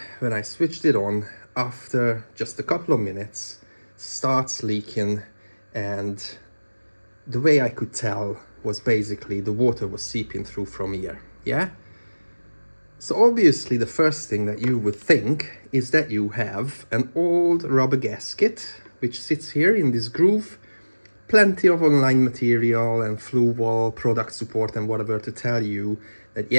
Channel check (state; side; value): inverted; both; correlation -1.00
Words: when I switched it on, after just a couple of minutes, starts leaking, and the way I could tell was basically the water was seeping through from here, yeah? So obviously the first thing that you would think is that you have an old rubber gasket which sits here in this groove. Plenty of online material and Fluval product support and whatever to tell you that